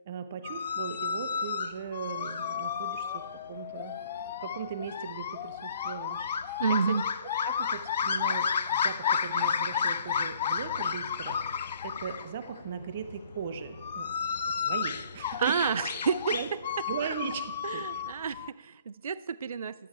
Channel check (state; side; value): inverted; both; correlation -0.58